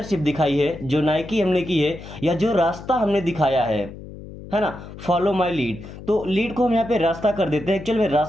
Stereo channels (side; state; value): left; noise; hum, 14 dB below the sound